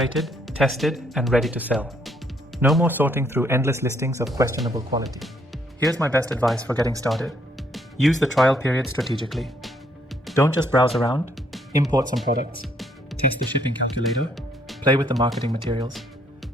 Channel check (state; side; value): normal; both; correlation 0.69